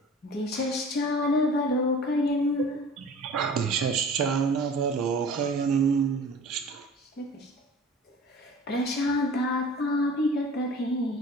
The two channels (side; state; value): both; normal; correlation 0.42